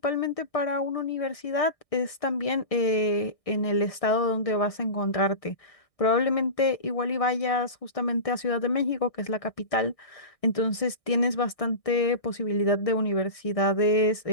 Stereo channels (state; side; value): late; right; 1.6 ms